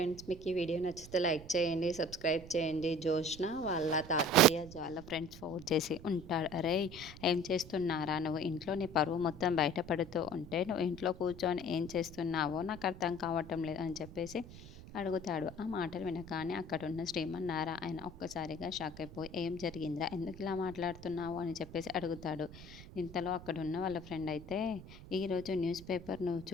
మీకు ఈ video నచ్చితే లైక్ చేయండి, సబ్స్క్రైబ్ చేయండి. జోష్న వాళ్ళ తాతయ్య వాళ్ళ ఫ్రెండ్స్ ఫోన్ చేసి ఉంటాడు. అరే, ఏం చేస్తున్నారా నువ్వు? ఇంట్లో నీ పరువు మొత్తం బయటపడుతూ ఉంటే నువ్వు ఇంట్లో కూర్చొని ఏం చేస్తున్నావో నాకు అర్థం కావటం లేదు అని చెప్పేసి అడుగుతాడు. ఆ మాటలు వినగానే అక్కడున్న శ్రీమన్నారాయణ ఒక్కసారిగా షాక్ అయిపోయి, ఏం జరిగిందిరా, ఎందుకు ఇలా మాట్లాడుతున్నావు అని చెప్పేసి అడుగుతాడు. ఇంతలో అక్కడున్న వాళ్ళ ఫ్రెండ్ అయితే, ఈరోజు న్యూస్ పేపర్ నువ్వు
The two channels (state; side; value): noise; right; rumble, 15 dB below the sound